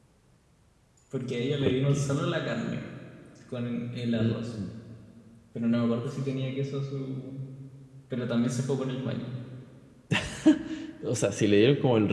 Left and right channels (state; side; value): identical; both; correlation 1.00